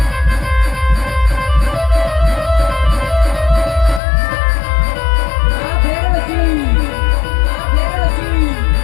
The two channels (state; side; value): drops out; right; at 4.0 s